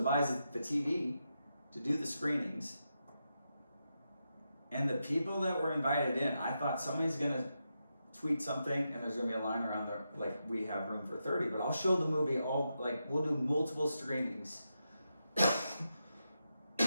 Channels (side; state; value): both; inverted; correlation -0.86